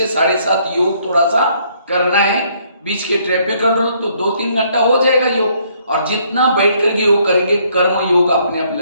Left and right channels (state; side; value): inverted; both; correlation -0.67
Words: 7:30 योग थोड़ा सा करना है। बीच के ट्रैफिक कंट्रोल तो 2-3 घंटा हो जाएगा योग, और जितना बैठ करके योग करेंगे कर्म योग अपने आप